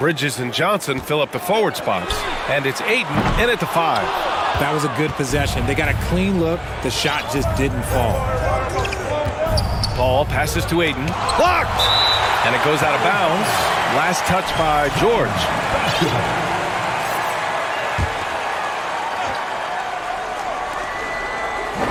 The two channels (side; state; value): both; identical; correlation 1.00